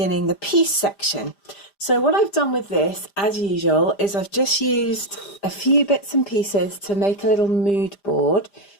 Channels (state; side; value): late; right; 5.0 ms